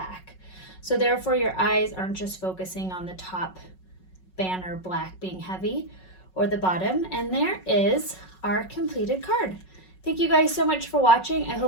So therefore your eyes aren't just focusing on the top banner black being heavy or the bottom. And there is our completed card. Thank you guys so much for watching. I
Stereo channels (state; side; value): late; right; 5.4 ms